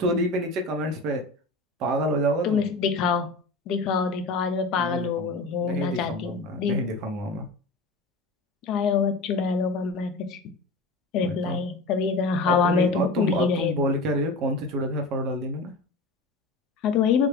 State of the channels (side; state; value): right; quieter; 3.2 dB